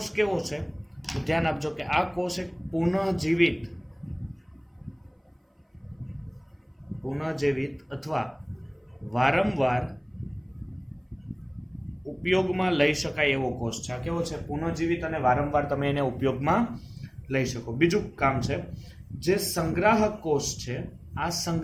કેવો છે. ધ્યાન આપજો કે આ કોષ એક પુનઃજીવિત અથવા વારંવાર ઉપયોગમાં લઈ શકાય એવો કોષ છે. આ કેવો છે? પુનઃજીવિત અને વારંવાર તમે એને ઉપયોગમાં લઈ શકો. બીજું કામ છે જે સંગ્રાહક કોષ છે, આ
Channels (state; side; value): identical; both; correlation 1.00